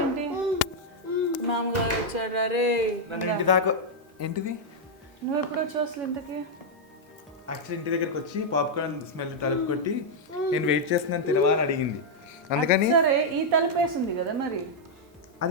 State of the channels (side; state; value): both; normal; correlation -0.03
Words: మామగారు వచ్చారా? రే, ఇంటి దాకా ఏంటిది? నువ్వు ఎప్పుడు వచ్చావు అసలు ఇంతకి? యాక్చువల్లీ ఇంటి దగ్గరికి వచ్చి పాప్కార్న్ స్మెల్ తలుపు కొట్టి నేను వెయిట్ చేస్తున్నాను తినవా అని అడిగింది. అందుకని సరే, ఈ తలుపు వేసింది కదా మరి.